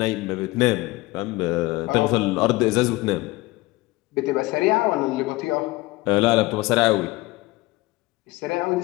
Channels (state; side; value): quieter; right; 21.0 dB